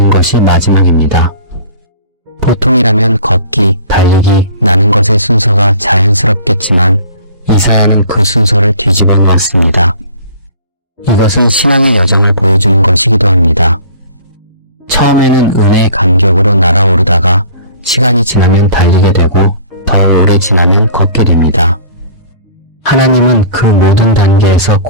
것이 마지막입니다. 보통이라면 걷기, 달리기, 나는 것의 순서가 자연스럽겠지만 이사야는 그 순서를 뒤집어 놓았습니다. 이것은 신앙의 여정을 보여주는 것이기도 합니다. 처음에는 은혜의 감격으로 날아오르다가 시간이 지나면 달리게 되고 더 오래 지나면 걷게 됩니다. 하나님은 그 모든 단계에서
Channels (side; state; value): both; inverted; correlation -0.48